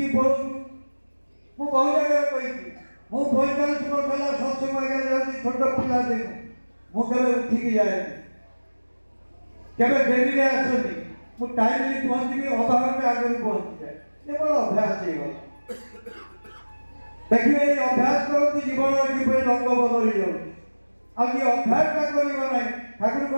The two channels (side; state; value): both; inverted; correlation -1.00